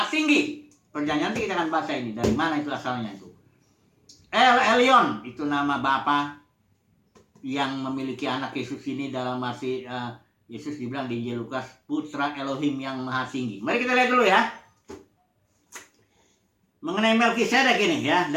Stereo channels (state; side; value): identical; both; correlation 1.00